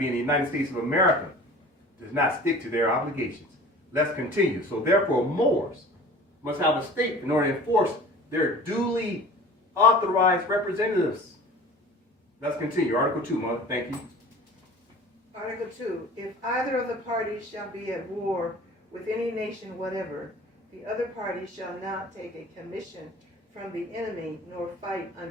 the United States of America, does not stick to their obligations. Let's continue. So therefore, Moors must have a state in order to enforce their duly authorized representatives. Let's continue. Article 2, Mother. Thank you. Article 2. If either of the parties shall be at war with any nation whatever, the other party shall not take a commission from the enemy nor fight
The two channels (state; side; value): normal; both; correlation 0.42